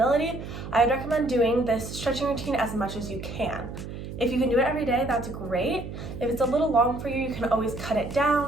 I would recommend doing this stretching routine as much as you can. If you can do it every day, that's great. If it's a little long for you, you can always cut it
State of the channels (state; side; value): noise; right; hum, 9 dB below the sound